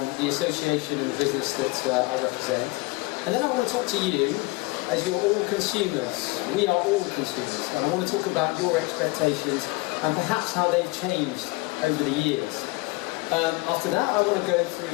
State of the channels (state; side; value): quieter; right; 24.2 dB